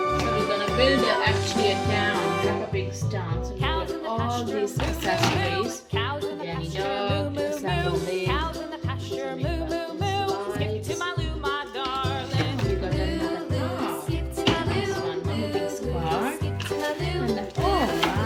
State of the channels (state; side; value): identical; both; correlation 1.00